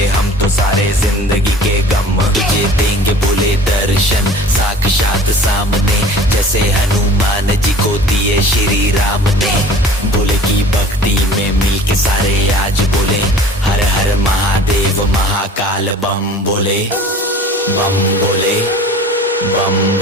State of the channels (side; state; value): both; normal; correlation 0.45